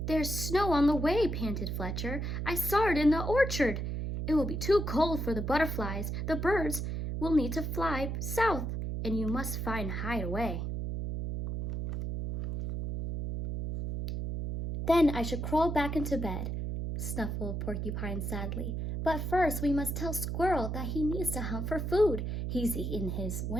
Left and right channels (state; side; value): noise; right; hum, 3 dB below the sound